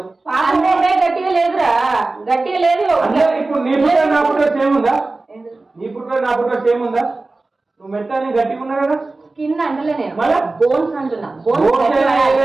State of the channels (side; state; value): left; quieter; 3.3 dB